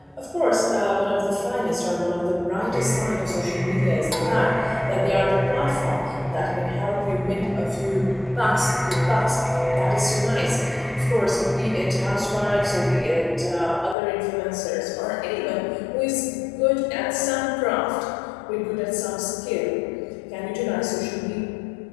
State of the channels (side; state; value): right; drops out; at 14.0 s